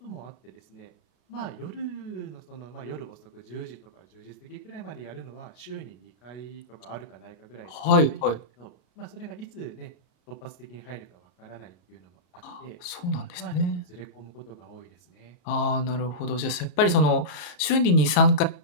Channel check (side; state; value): right; late; 34 ms